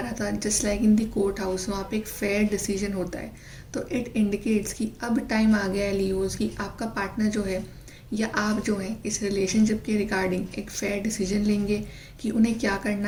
था. Just like in the court house, वहाँ पे एक फेयर डिसीजन होता है. तो इट इंडिकेट्स कि अब टाइम आ गया है लियोज कि आपका पार्टनर जो है या आप जो है इस रिलेशनशिप के रिगार्डिंग एक फेयर डिसीजन लेंगे कि उन्हें क्या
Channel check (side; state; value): both; identical; correlation 1.00